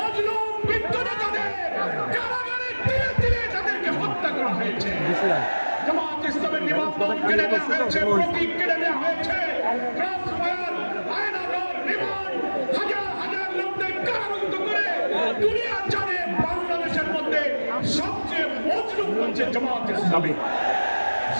বৃদ্ধ নেতাদের কারাগারে তিলে তিলে তাদেরকে হত্যা করা হয়েছে। জামাত ইসলামের নিবন্ধন কেড়ে নেওয়া হয়েছে, প্রতীক কেড়ে নেওয়া হয়েছে, ক্রস ফায়ার, আয়নাঘর, রিমান্ড, হাজার হাজার লোকদের কারারুদ্ধ করে দুনিয়া জানে বাংলাদেশের মধ্যে সবচেয়ে মজলুম হচ্ছে জামাত ইসলামী।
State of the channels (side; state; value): both; inverted; correlation -1.00